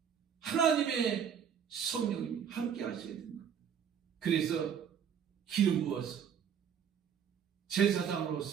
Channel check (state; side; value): quieter; left; 8.0 dB